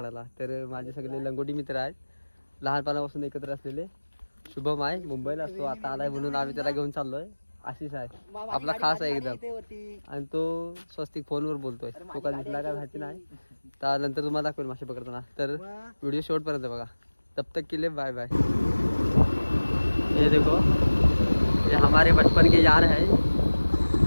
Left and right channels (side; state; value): both; inverted; correlation -1.00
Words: तर माझे सगळे लंगोटी मित्र आहेत, लहानपणापासून एकत्र असलेले. शुभम आहे, मुंबईला असतो, आता आलाय म्हणून आम्ही त्याला घेऊन चाललो आहे. आशिष आहे आपला खास आहे एकदम, आणि तो स्वस्तिक फोनवर बोलतोय. तो का दिसला का माहिती नाही, तर नंतर तुम्हाला दाखवेल मासे पकडताना. तर व्हिडिओ शेवटपर्यंत बघा. तब तक के लिए बाय बाय. ये देखो, ये हमारे बचपन के यार है.